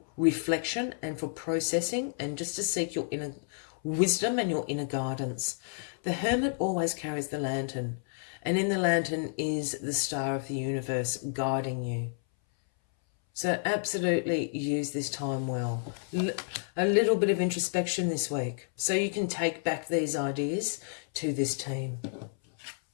reflection and for processing and just to seek your inner wisdom and your inner guidance. The Hermit always carries the lantern, and in the lantern is the star of the universe guiding you. So absolutely use this time well. A little bit of introspection this week so you can take back these ideas to this team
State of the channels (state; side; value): silent; right; 57 dB below the other